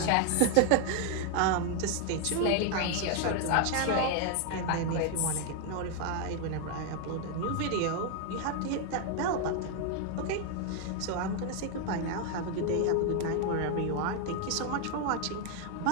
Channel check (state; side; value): different; both; correlation 0.00